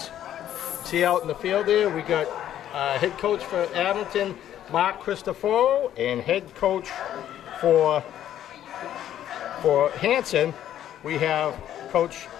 See out in the field there, we got head coach for Abington, Mark Cristoforo, and head coach for Hanson, we have Coach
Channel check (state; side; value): quieter; right; 11.3 dB